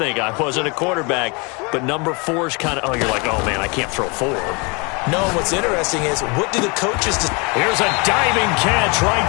I wasn't a quarterback, but number 4 is kind of, you're like, oh, man, I can't throw 4. No, what's interesting is, what do the coaches do? Here's a diving catch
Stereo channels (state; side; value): quieter; right; 30.4 dB